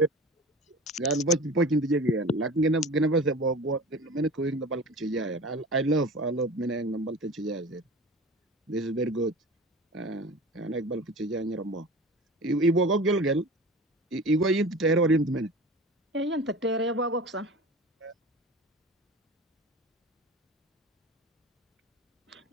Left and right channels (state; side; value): normal; both; correlation 0.36